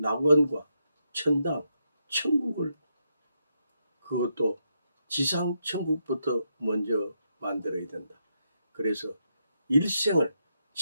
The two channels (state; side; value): inverted; both; correlation -0.81